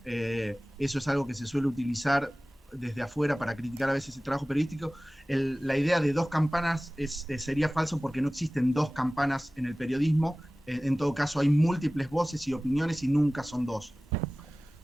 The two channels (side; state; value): both; normal; correlation 0.97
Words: Eso es algo que se suele utilizar desde afuera para criticar a veces el trabajo periodístico. La idea de 2 campanas sería falso porque no existen 2 campanas en el periodismo. En todo caso hay múltiples voces y opiniones y nunca son 2.